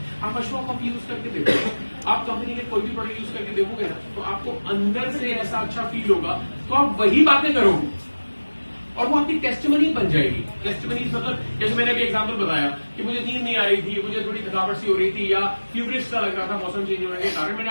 आप अशोक कॉफी यूज करके देखो, आप कंपनी के कोई भी प्रोडक्ट यूज करके देखोगे ना, तो आपको अंदर से ऐसा अच्छा फील होगा, तो आप वही बातें करोगे और वो आपकी टेस्टिमनी बन जाएगी। टेस्टिमनी मतलब जैसे मैंने अभी एग्जांपल बताया कि मुझे नींद नहीं आ रही थी, मुझे थोड़ी थकावट सी हो रही थी, या फ्यूरिश सा लग रहा था मौसम चेंज होने के कारण, मैंने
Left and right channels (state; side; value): inverted; both; correlation -1.00